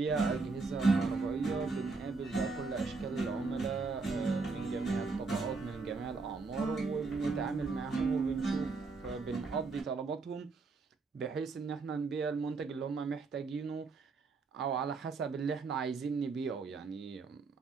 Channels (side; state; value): left; quieter; 4.2 dB